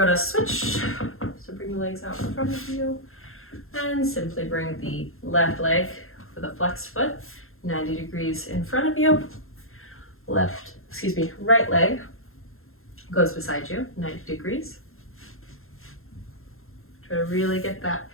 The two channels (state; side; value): late; right; 0.61 ms